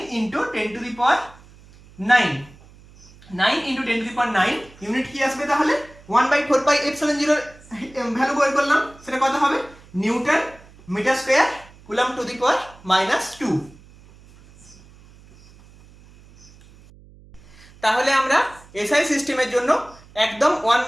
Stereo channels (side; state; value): right; noise; hum, 24 dB below the sound